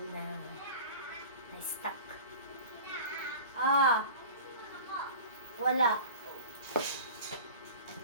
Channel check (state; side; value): inverted; both; correlation -0.38